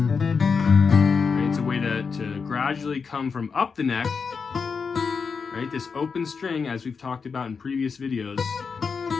Right, it's a way to gradually come from up the neck. Right, this open string, as we've talked about in previous videos,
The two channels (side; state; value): right; quieter; 5.4 dB